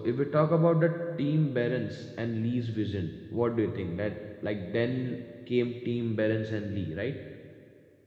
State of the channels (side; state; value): both; identical; correlation 1.00